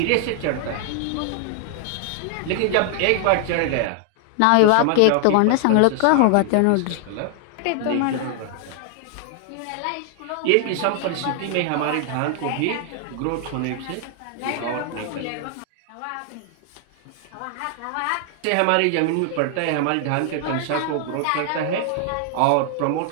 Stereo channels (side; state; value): both; different; correlation 0.00